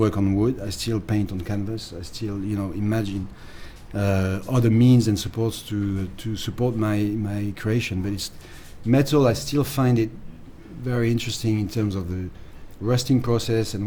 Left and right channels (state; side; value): identical; both; correlation 1.00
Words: on wood, I still paint on canvas, I still imagine other means and supports to support my creation. But it's metal, I still find it very interesting in terms of the rusting process and